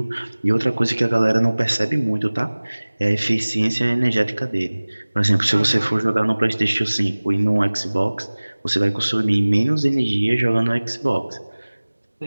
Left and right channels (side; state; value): both; inverted; correlation -1.00